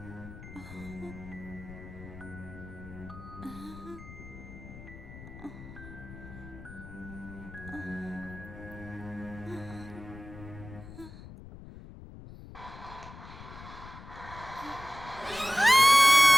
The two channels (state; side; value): noise; left; rumble, 15 dB below the sound